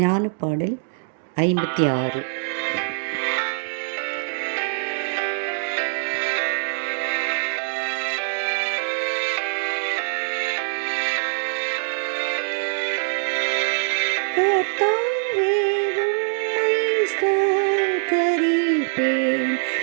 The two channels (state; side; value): silent; left; digital silence